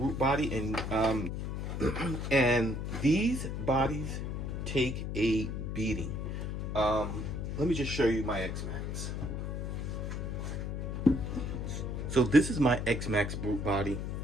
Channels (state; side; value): noise; left; hum, 3 dB below the sound